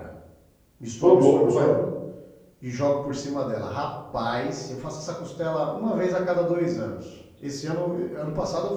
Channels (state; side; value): identical; both; correlation 1.00